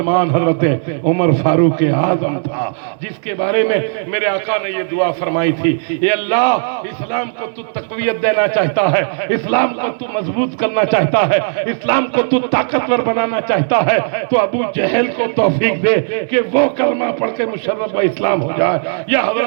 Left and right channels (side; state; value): left; silent; digital silence